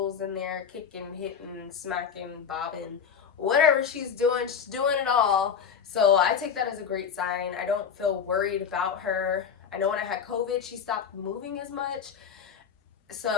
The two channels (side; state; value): right; quieter; 7.1 dB